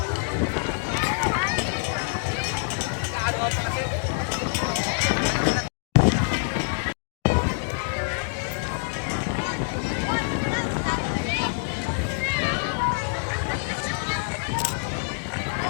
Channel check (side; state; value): right; silent; 61 dB below the other